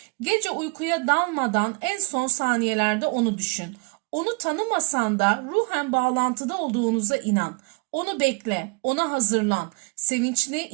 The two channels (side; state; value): left; quieter; 32.2 dB